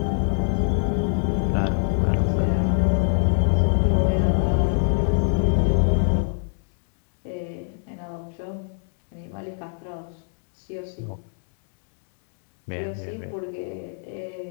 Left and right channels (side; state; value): right; silent; digital silence